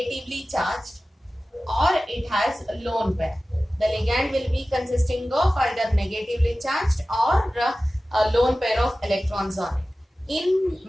charged or it has a lone pair. The ligand will be consisting of either negatively charged or a lone pair of electrons on it. In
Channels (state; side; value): normal; both; correlation 0.96